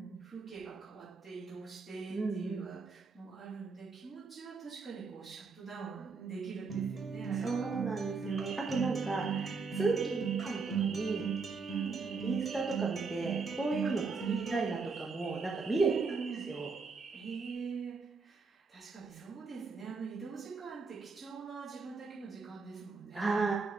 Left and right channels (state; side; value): quieter; left; 4.6 dB